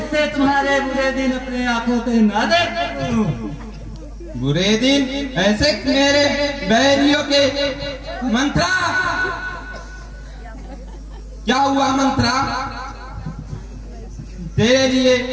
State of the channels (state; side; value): identical; both; correlation 1.00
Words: तुम्हारे बुरे दिन अपने आंखों से ना देख सकूं। बुरे दिन? ऐसे मेरे बैरियों के मंत्रा? क्या हुआ मंत्रा? तेरे लिए